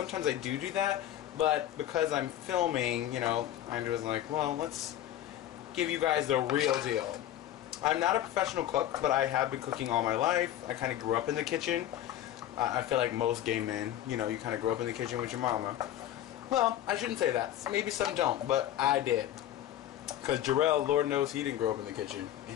I do that, but because I'm filming, you know, I was like, well, let's give you guys the real deal. I'm not a professional cook, but I have been cooking all my life. I kind of grew up in the kitchen. I feel like most gay men, you know, you kind of grow up in the kitchen with your mama. Well, I shouldn't say that. Maybe some don't, but I did. Because Jarrell, Lord knows he didn't grow up in the kitchen, and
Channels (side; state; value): right; quieter; 12.3 dB